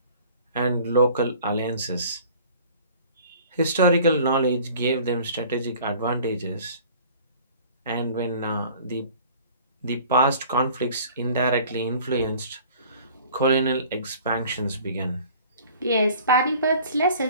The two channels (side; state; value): both; inverted; correlation -0.49